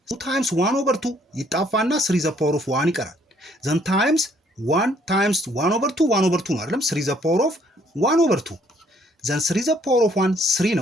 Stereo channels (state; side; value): normal; both; correlation 0.65